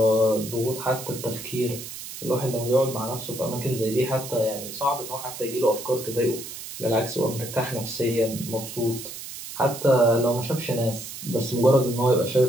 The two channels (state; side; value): noise; right; hiss, 10 dB below the sound